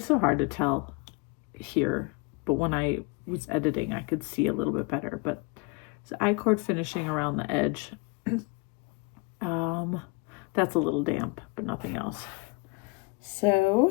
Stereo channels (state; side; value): quieter; right; 27.2 dB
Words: so hard to tell here, but when I was editing, I could see a little bit better. But it's I-cord finishing around the edge. That's a little damp, but nothing else.